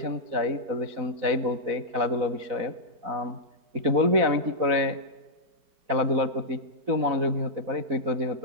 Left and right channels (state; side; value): late; left; 4.1 ms